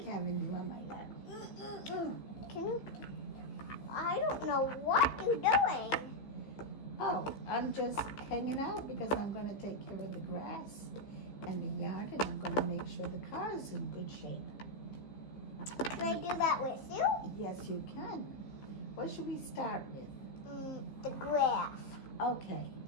having you on my lap. Can you? I don't know what you're doing. Oh, I'm just hanging out because I'm going to take care of the grass and the yard, and I'm going to make sure the car is in good shape. Can I do that with you? Yes, you can. What should we start with? The grass. Okay,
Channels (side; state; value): right; late; 15 ms